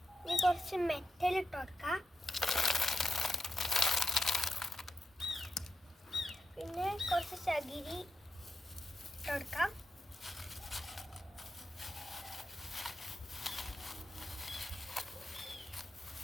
ഇനി കുറച്ച് മെറ്റൽ ഇട്ട് കൊടുക്കാം. പിന്നെ കുറച്ച് ചകിരി ഇട്ട് കൊടുക്കാം.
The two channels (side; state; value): both; normal; correlation 0.88